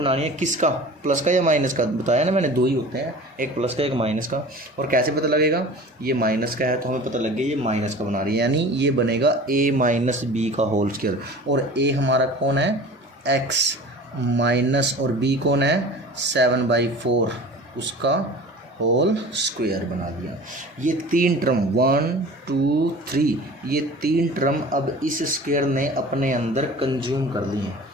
है किसका, प्लस का या माइनस का, बताया ना मैंने, दो ही होते हैं, एक प्लस का एक माइनस का। और कैसे पता लगेगा, ये माइनस का है तो हमें पता लग गया ये माइनस का बना रही है, यानी ये बनेगा a-b का होल स्क्वायर, और a हमारा कौन है x माइनस, और b कौन है 7/4, उसका होल स्क्वायर बना दिया। ये 3 टर्म 1 2 3, ये 3 टर्म अब इस स्क्वायर ने अपने अंदर कंज्यूम कर लिए हैं।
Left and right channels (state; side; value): normal; both; correlation 0.40